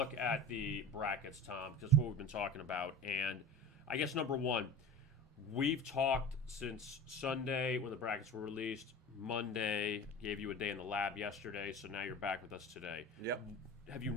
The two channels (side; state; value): both; normal; correlation 0.34